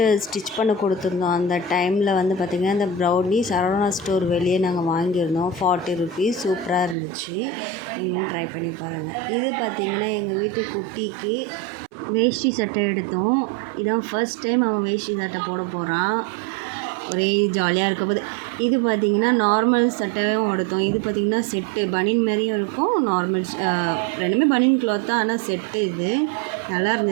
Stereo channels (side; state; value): left; drops out; at 7.0 s